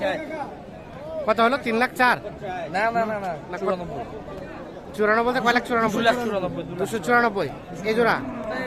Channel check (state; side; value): identical; both; correlation 1.00